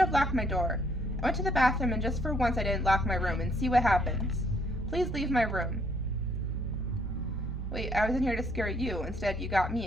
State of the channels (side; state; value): both; normal; correlation 0.67